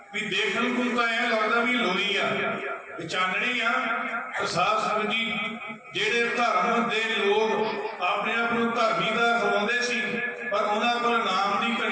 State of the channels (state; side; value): identical; both; correlation 1.00